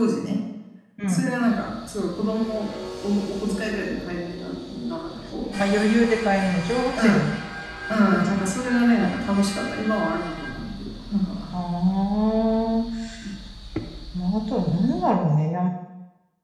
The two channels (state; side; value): identical; both; correlation 1.00